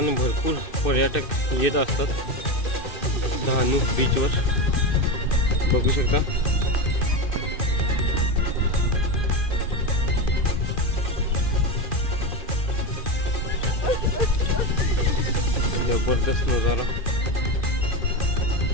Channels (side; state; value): right; late; 2.4 ms